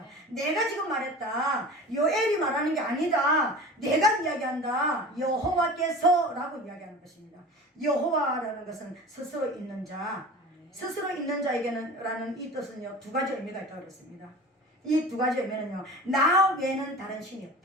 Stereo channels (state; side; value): normal; both; correlation 0.37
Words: 내가 지금 말했다. 요엘이 말하는 게 아니다. 내가 이야기한다. 여호와께서 라고 이야기하는 것입니다. 여호와라는 것은 스스로 있는 자, 스스로 있는 자에게는 라는 이 뜻은요, 두 가지 의미가 있다고 그랬습니다. 이 두 가지 의미는요, 나 외에는 다른 신이